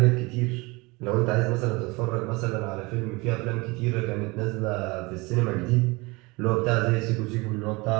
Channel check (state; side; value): quieter; left; 24.9 dB